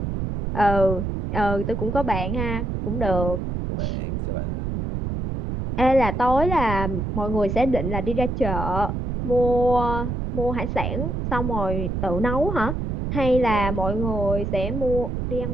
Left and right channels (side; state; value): right; noise; rumble, 2 dB below the sound